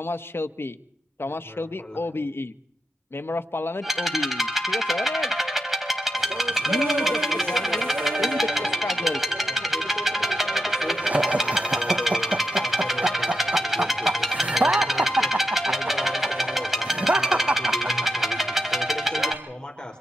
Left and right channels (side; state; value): both; normal; correlation 0.86